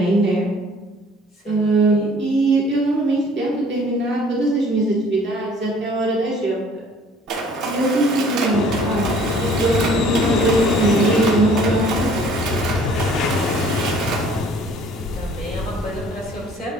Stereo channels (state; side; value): normal; both; correlation 0.54